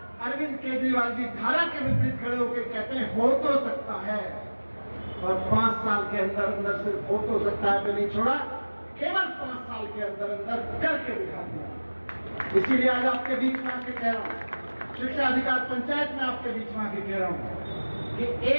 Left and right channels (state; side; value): inverted; both; correlation -1.00